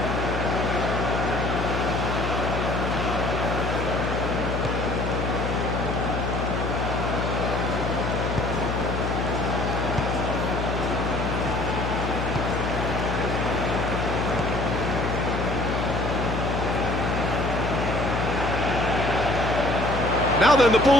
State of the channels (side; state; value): left; noise; hum, 2 dB below the sound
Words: Now then, the